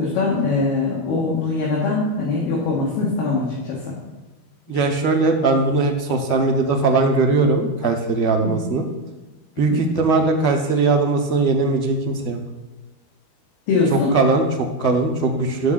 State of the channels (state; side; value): late; right; 12 ms